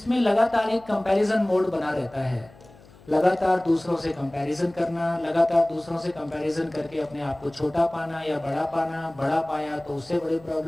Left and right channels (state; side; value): noise; left; hum, 24 dB below the sound